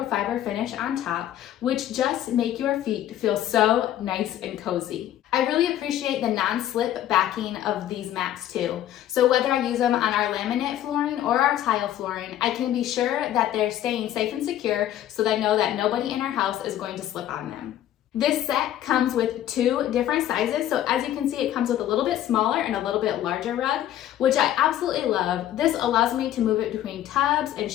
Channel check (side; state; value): right; quieter; 12.1 dB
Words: finish on top, which just make your feet feel so nice and cozy. I really appreciate the non-slip backing of these mats too. So whether I use them on our laminate flooring or our tile flooring, I can be sure that they're staying safe and secure so that I know that nobody in our house is going to slip on them. This set comes with 2 different sizes, so as you can see, it comes with a little bit smaller and a little bit larger rug, which I absolutely love. This allows me to move it between tubs and